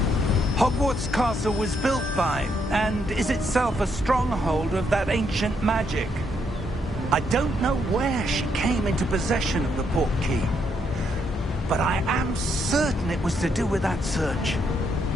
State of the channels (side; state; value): both; normal; correlation 0.75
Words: Hogwarts Castle was built by, and is itself a stronghold of that ancient magic. I don't know where she came into possession of the port key, but I am certain it was to do with that search.